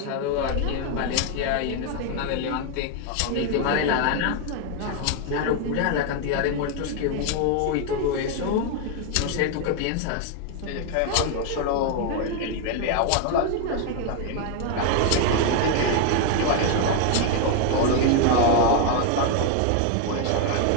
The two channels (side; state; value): both; different; correlation 0.01